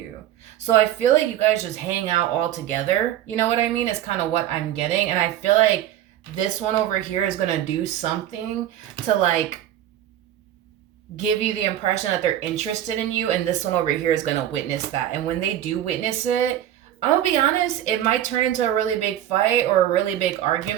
So I feel like you guys just hang out all together. You know what I mean? It's kind of what I'm getting. And I feel like this one over here is going to do something to, like, give you the impression that they're interested in you. And this one over here is going to witness that. And when they do witness it, I'm going to be honest, it might turn into a really big fight or a really big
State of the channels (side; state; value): left; quieter; 11.9 dB